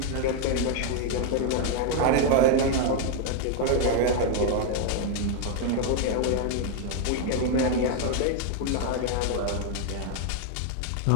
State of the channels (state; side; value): different; both; correlation 0.01